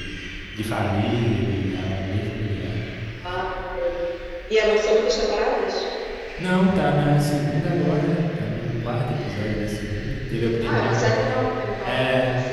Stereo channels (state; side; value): identical; both; correlation 1.00